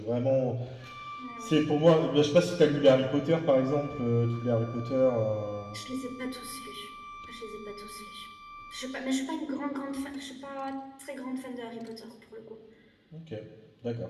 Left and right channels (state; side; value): identical; both; correlation 1.00